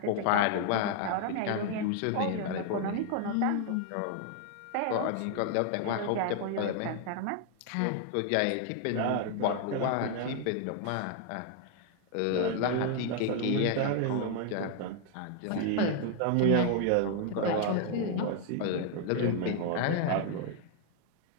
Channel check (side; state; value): both; different; correlation 0.00